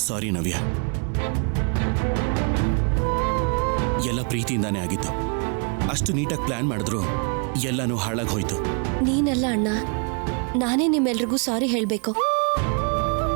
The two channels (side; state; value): left; quieter; 38.2 dB